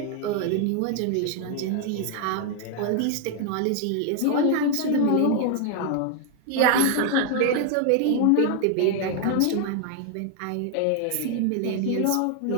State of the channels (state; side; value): different; both; correlation 0.00